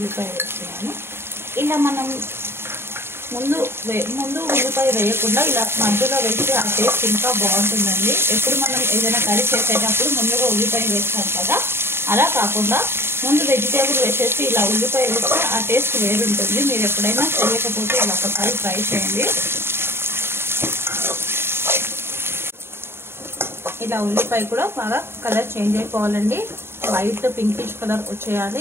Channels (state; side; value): late; left; 0.11 ms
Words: వేస్తున్నాను. ఇలా మనం ముందు ఉల్లిపాయ వేయకుండా ఇలా మధ్యలో వేస్తే ఆ టేస్ట్ ఇంకా బాగుంటుందండి. ఎప్పుడు మనం ఏదైనా కర్రీ చేసేటప్పుడు ముందుగా ఉల్లిపాయ వేస్తాం కదా, అలా కాకుండా ముందు వెజిటేబుల్ వేసేసి ఇలా ఉల్లిపాయ వేస్తే ఆ టేస్ట్ వేరుంటుంది. మీరు ఎప్పుడైనా చేయకపోతే ఇలా ఒకసారి ట్రై చేయండి. ఇలా ఉల్లిపాయ కూడా బాగా కలర్ చేంజ్ అయిపోవాలండి. వైట్ పింకిష్ కలర్